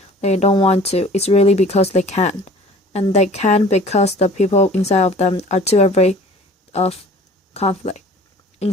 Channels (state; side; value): normal; both; correlation 0.47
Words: they don't want to. It's really because they can't. And they can't because the people inside of them are too afraid of conflict. In